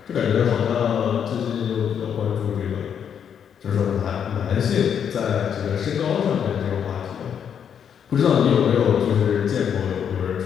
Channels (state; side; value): quieter; right; 8.1 dB